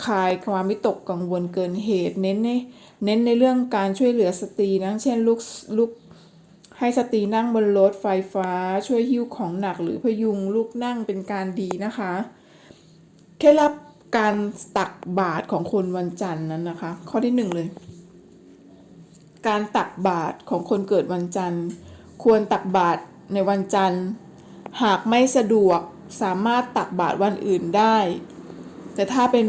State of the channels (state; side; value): identical; both; correlation 1.00